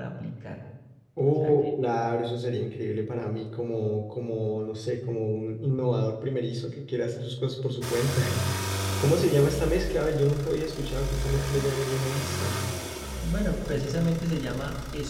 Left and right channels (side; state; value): both; identical; correlation 1.00